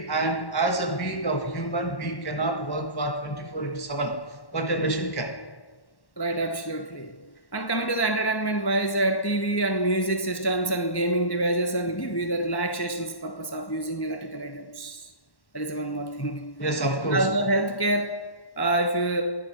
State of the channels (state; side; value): late; right; 1.1 ms